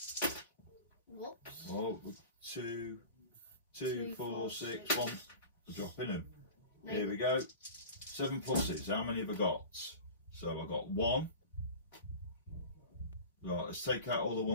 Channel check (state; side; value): inverted; both; correlation -0.36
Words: Whoops. Oh, 2, 4, 6, 1. We're dropping them. No. Here we go. 7+. How many have I got? So I've got 1. Right, let's take out all the